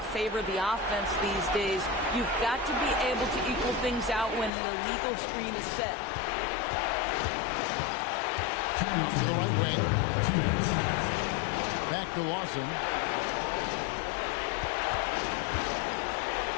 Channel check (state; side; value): drops out; right; at 4.5 s